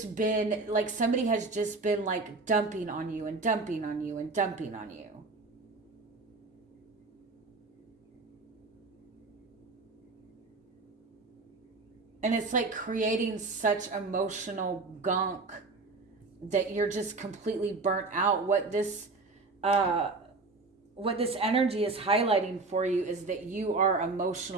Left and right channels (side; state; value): left; quieter; 3.7 dB